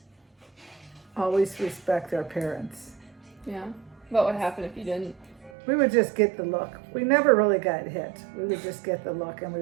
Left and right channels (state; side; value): drops out; left; at 5.5 s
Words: Always respect our parents. Yeah. What would happen if you didn't? We would just get the look. We never really got hit. We would just get the look and we